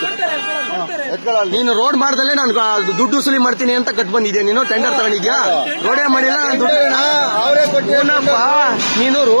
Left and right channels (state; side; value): inverted; both; correlation -1.00